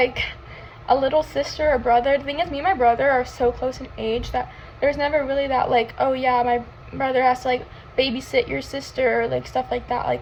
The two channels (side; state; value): both; identical; correlation 1.00